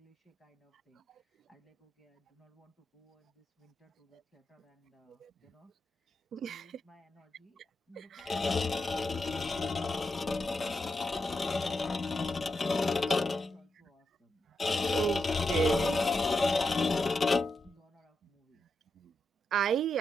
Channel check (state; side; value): normal; both; correlation 0.85